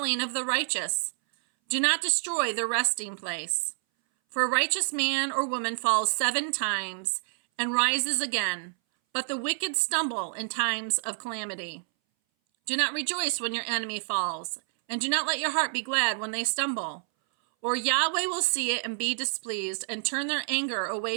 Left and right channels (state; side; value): silent; left; 59 dB below the other